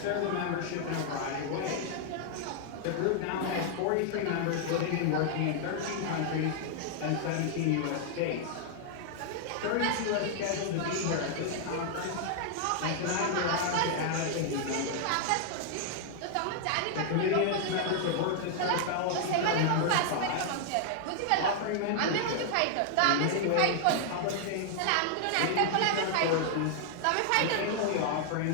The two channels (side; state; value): both; different; correlation 0.00